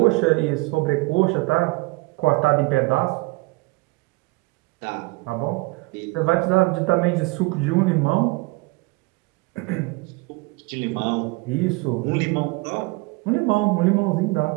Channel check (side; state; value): left; quieter; 23.7 dB